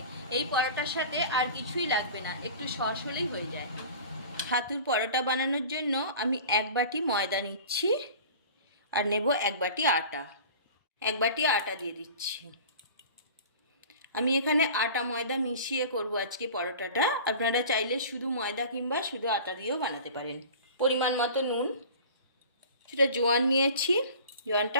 এই পরোটার সাথে আর কিছুই লাগবে না, একটু সস হলেই হয়ে যায়। ছাতুর পরোটা বানানোর জন্য আমি 1 বাটি ময়দা নিচ্ছি আর নেব 1 বাটি আটা। 1 বাটি আটা দিয়ে দিচ্ছি। আমি এখানে আটা ময়দা মিশিয়ে করব আজকে পরোটাটা। আপনারা চাইলে শুধু ময়দা কিংবা শুধু আটা দিয়েও বানাতে পারেন। পরিমাণ মতো নুন, সেটা জোয়ান নিয়েছি, জোয়ানটা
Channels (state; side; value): inverted; both; correlation -0.40